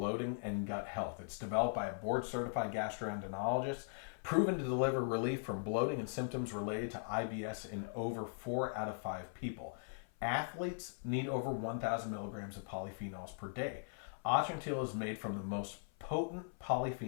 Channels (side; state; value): right; silent; 51 dB below the other